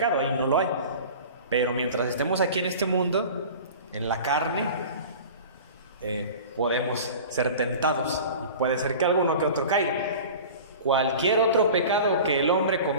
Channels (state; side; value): inverted; both; correlation -0.38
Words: ahí no lo hay. Pero mientras estemos aquí en este mundo, en la carne, podemos ser tentados y puede ser que alguno que otro caiga. Cualquier otro pecado que el hombre